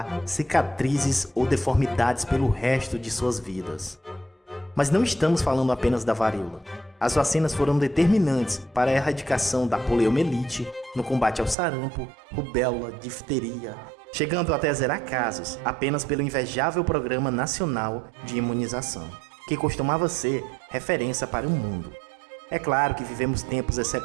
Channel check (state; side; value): drops out; left; at 11.6 s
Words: cicatrizes ou deformidades pelo resto de suas vidas. Mas não estamos falando apenas da varíola. As vacinas foram determinantes para a erradicação da poliomielite, no combate ao sarampo, rubéola, difteria, chegando até a zerar casos apenas pelo invejável Programa Nacional de Imunização, que costumava ser referência para o mundo. É claro que vivemos tempos